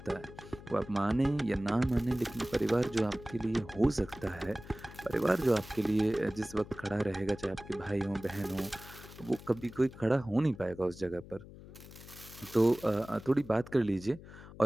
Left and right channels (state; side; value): noise; left; hum, 17 dB below the sound